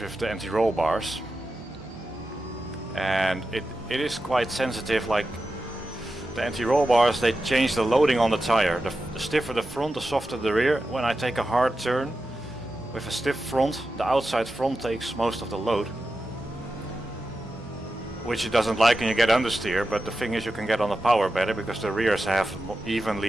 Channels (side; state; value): both; normal; correlation 0.91